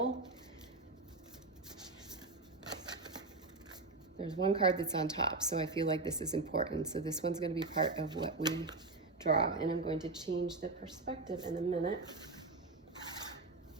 There's one card that's on top, so I feel like this is important. So this one's going to be part of what we draw, and I'm going to change the perspective in a minute.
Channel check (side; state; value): left; quieter; 3.4 dB